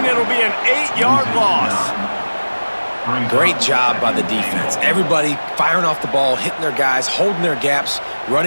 It'll be an 8-yard loss. Great job by the defense. Everybody firing off the ball, hitting their guys, holding their gaps,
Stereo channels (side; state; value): both; inverted; correlation -1.00